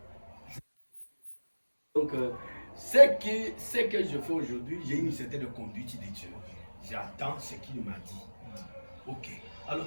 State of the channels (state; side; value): inverted; both; correlation -1.00